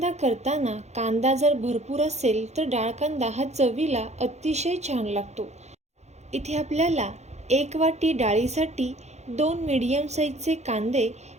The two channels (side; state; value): left; late; 0.32 ms